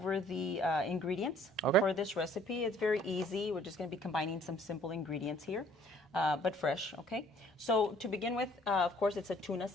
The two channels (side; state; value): both; normal; correlation 0.58